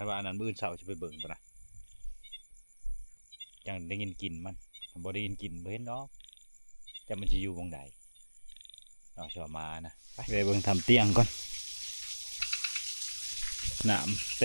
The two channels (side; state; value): both; inverted; correlation -1.00